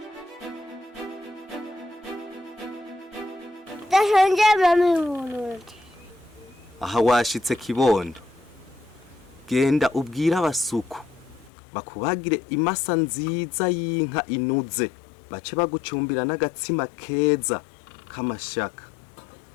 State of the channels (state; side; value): drops out; right; at 11.5 s